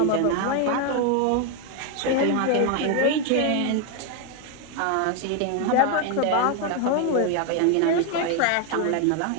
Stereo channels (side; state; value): both; different; correlation 0.01